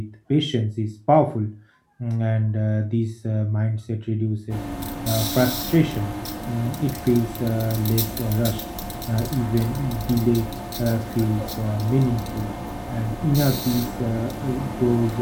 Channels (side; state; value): both; identical; correlation 1.00